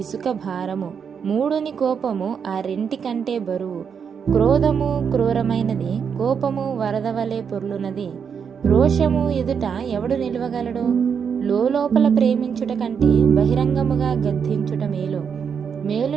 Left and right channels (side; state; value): left; quieter; 6.9 dB